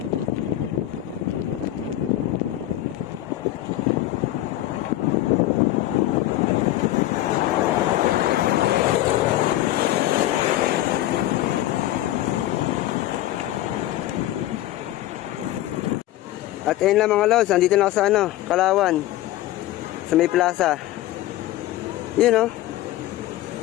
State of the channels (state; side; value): quieter; right; 14.7 dB